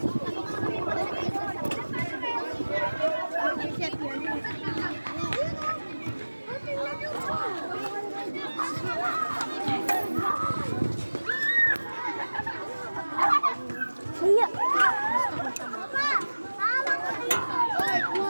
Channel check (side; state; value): both; inverted; correlation -1.00